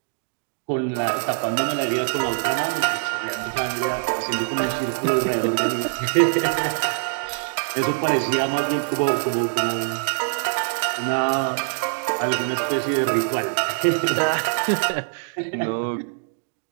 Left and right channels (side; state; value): left; silent; digital silence